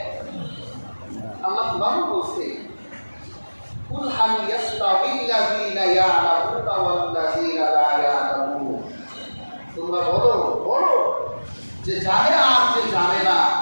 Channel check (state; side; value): inverted; both; correlation -1.00